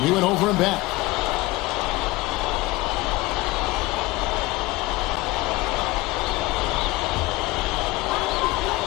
He went over and back.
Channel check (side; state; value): right; quieter; 20.5 dB